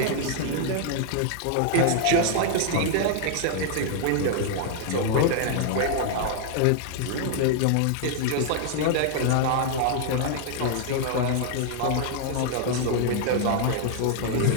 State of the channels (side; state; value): both; different; correlation 0.00